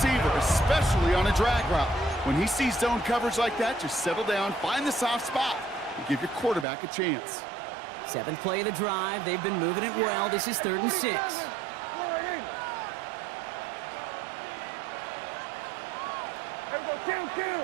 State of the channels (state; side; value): drops out; left; at 6.7 s